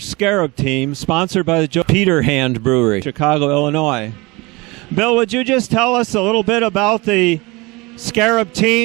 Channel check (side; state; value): left; quieter; 24.4 dB